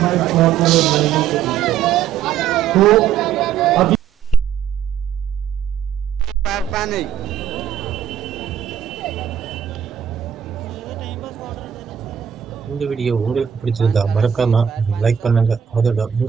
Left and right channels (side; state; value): left; quieter; 9.0 dB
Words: இந்த வீடியோ உங்களுக்கு பிடிச்சிருந்தா மறக்காம லைக் பண்ணுங்க. அதோட